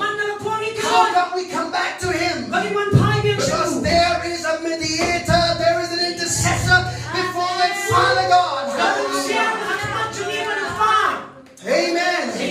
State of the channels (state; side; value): identical; both; correlation 1.00